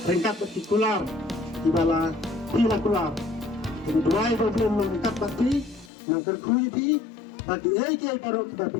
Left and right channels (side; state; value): right; drops out; at 5.9 s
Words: Rangkat partikular ibala pilakular kedua problem rangkat pati nang terkui pi bagi ai karo kita